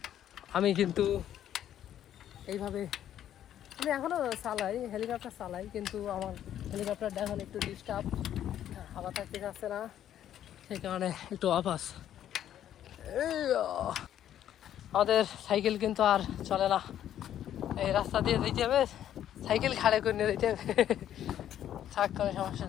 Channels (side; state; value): right; quieter; 11.0 dB